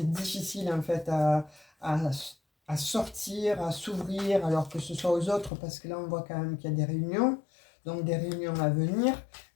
difficile en fait à, à sortir, à s'ouvrir, alors que ce soit aux autres, parce que là on voit quand même qu'il y a des réunions, donc des réunions à venir.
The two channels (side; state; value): right; drops out; at 5.5 s